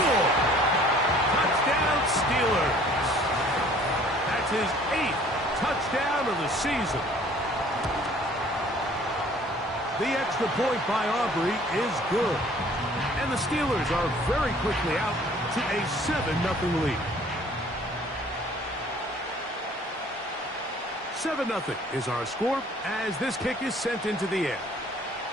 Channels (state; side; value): normal; both; correlation 0.54